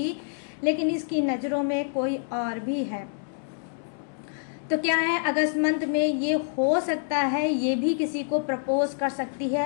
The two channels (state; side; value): silent; right; digital silence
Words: लेकिन इसकी नज़रों में कोई और भी है। तो क्या है, अगस्त मंथ में ये हो सकता है ये भी किसी को प्रपोज कर सकती है